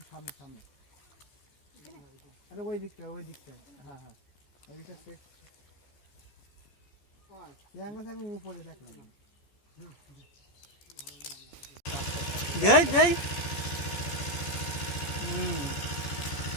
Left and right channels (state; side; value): late; right; 14 ms